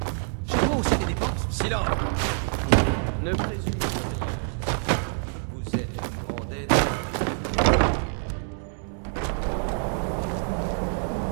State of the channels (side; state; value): left; silent; 61 dB below the other